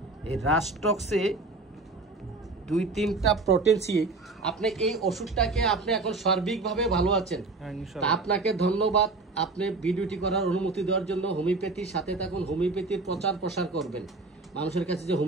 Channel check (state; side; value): quieter; left; 3.5 dB